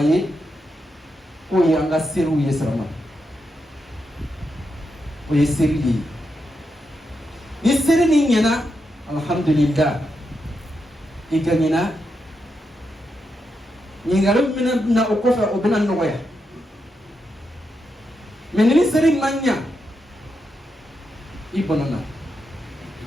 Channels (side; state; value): both; normal; correlation 0.85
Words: كوي أنغا سيرو يسرما ويسيري يسيري نينا الحمد لله إيغانينا نيغالو منا أكوفا وبنا نويا من نسيري مانيا ibonana